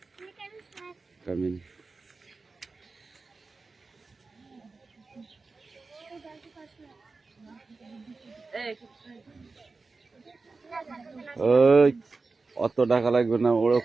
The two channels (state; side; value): quieter; left; 4.0 dB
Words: Come in. অত টাকা লাগবে না, ওরা